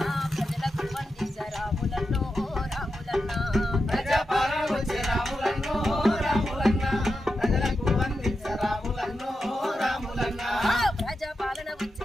ప్రజలకు వందించే రాములన్నో రాములన్న ప్రజాపాలన వచ్చే రాములన్నో రాములన్న ప్రజలకు వందించే రాములన్నో రాములన్న ప్రజాపాలన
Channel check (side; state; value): both; normal; correlation 0.89